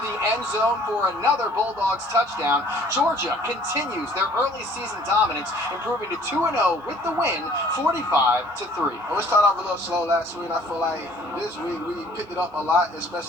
the end zone for another Bulldogs touchdown. Georgia continues their early season dominance, improving to 2-0 with the win, 45-3. We started off a little slow last week. I feel like this week we picked it up a lot,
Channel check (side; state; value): both; normal; correlation 0.56